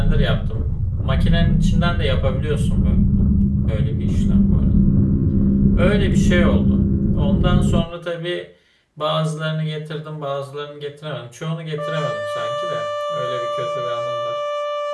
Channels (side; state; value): both; identical; correlation 1.00